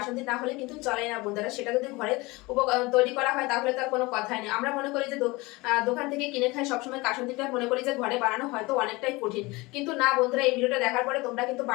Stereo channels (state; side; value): quieter; right; 23.1 dB